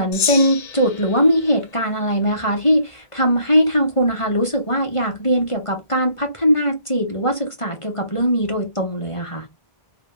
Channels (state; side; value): late; right; 1.5 ms